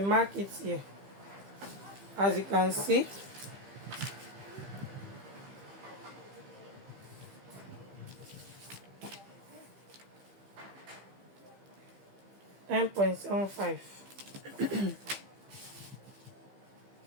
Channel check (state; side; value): late; left; 15 ms